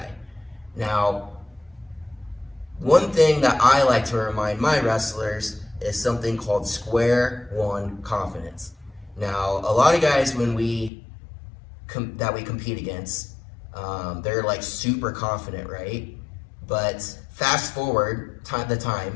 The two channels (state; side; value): drops out; right; at 10.9 s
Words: Now, one thing that I like to remind my wrestlers is something called square one confidence. Now, a lot of guys when we compete against, they're like super confident, right? But fast forward the